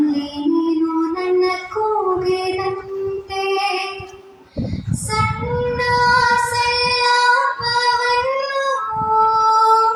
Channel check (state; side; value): identical; both; correlation 1.00